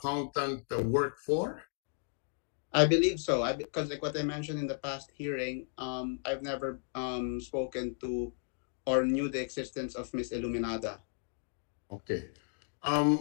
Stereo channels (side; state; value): right; silent; digital silence